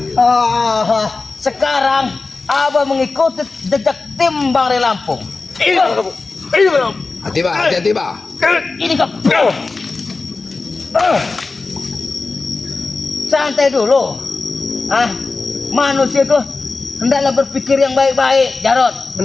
Sekarang Abah mengikuti jejak tim Bang Ray Lampung. Ini kamu. Ini kamu. Hati-hati, Bah. Ini kau. Santai dulu. Manusia itu hendaklah berpikir yang baik-baik, Jarot.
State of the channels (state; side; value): quieter; right; 3.8 dB